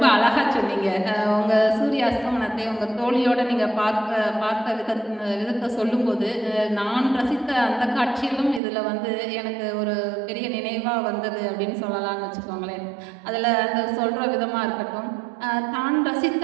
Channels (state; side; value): drops out; left; at 8.6 s